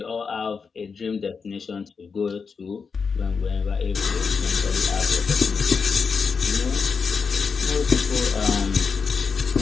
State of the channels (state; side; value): quieter; right; 5.4 dB